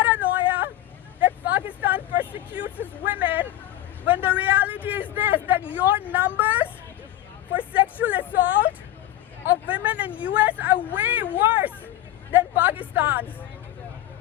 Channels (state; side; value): quieter; right; 13.7 dB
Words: that Pakistan persecutes its women, when the reality is this, that your numbers for sexual assault of women in US are way worse than Pakistan's?